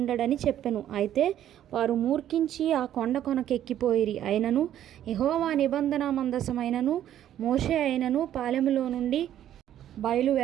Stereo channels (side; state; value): left; quieter; 11.3 dB